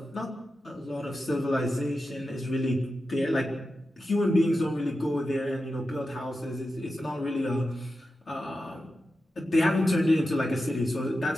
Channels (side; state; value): both; normal; correlation 0.91